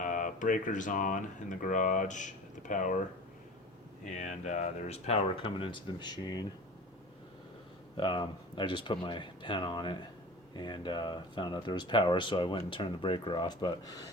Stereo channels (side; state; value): both; normal; correlation 0.37